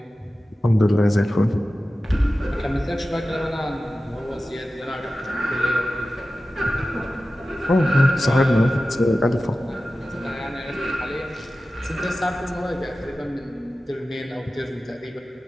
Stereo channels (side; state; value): both; normal; correlation 0.95